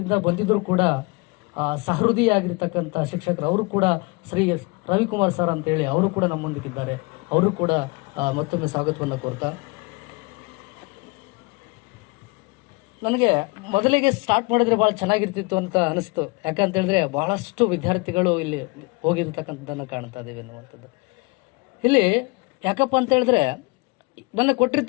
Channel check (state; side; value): quieter; right; 27.5 dB